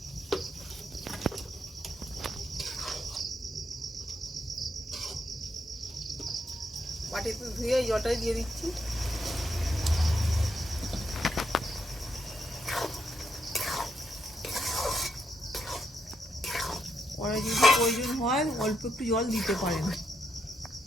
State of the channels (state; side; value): normal; both; correlation 0.78